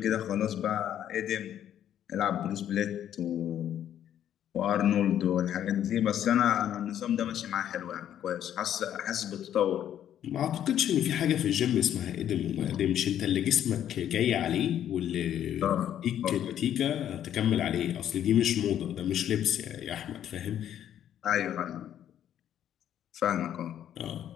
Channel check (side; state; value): right; quieter; 10.5 dB